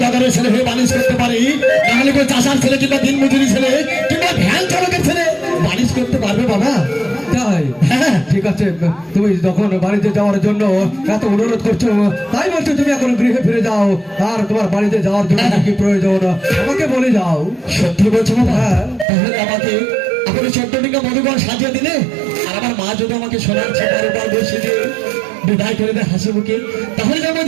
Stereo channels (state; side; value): drops out; left; at 19.1 s